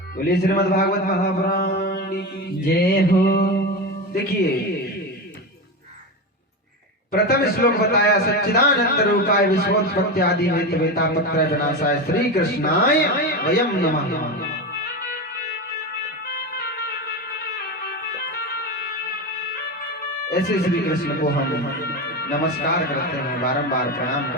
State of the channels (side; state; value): both; normal; correlation 0.19